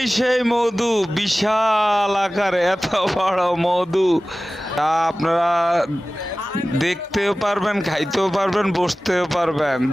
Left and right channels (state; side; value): normal; both; correlation 0.97